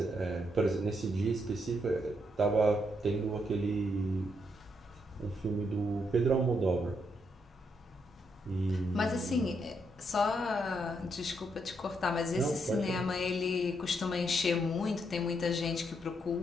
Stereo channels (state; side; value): normal; both; correlation 0.77